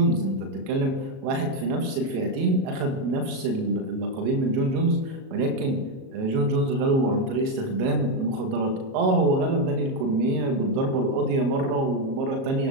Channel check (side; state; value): left; late; 37 ms